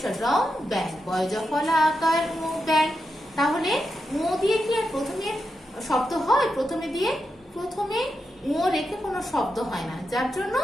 রং ব্যাং, বয় জফলা আকার ও ব্যাং। তাহলে ও দিয়ে কি আর প্রথমে শব্দ হয়? প্রথমে ও রেখে কোনো শব্দ হয় না, যার জন্য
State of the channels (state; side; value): normal; both; correlation 0.87